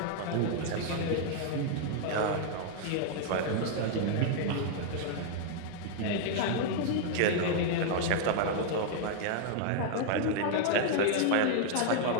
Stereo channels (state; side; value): different; both; correlation 0.00